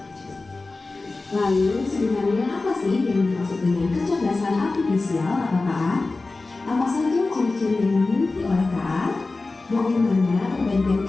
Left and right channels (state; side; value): quieter; right; 3.5 dB